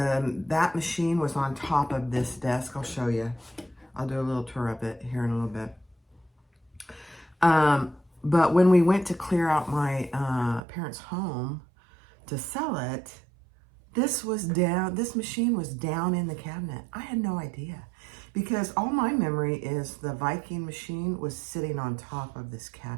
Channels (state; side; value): drops out; left; at 10.6 s